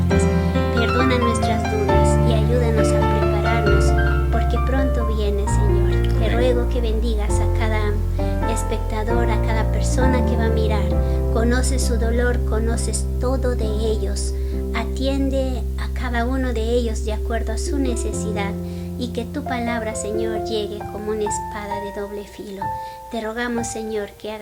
perdona nuestras dudas y ayúdanos a prepararnos porque pronto viene, Señor. Te ruego que bendigas a cada espectador, a cada persona que va a mirar. Conoces su dolor, conoces todo de ellos. Atiende a cada uno de ellos de acuerdo a su necesidad y que tu palabra, Señor, llegue como una espada de doble filo. Te rogamos, Señor, que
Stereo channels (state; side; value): identical; both; correlation 1.00